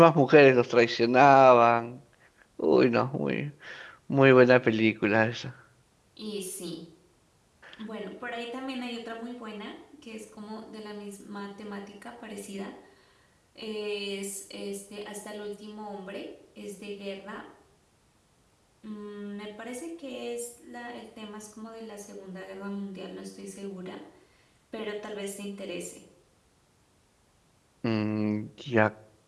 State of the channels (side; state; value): both; identical; correlation 1.00